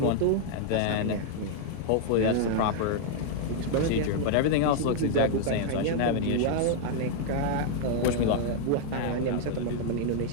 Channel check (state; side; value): different; both; correlation -0.01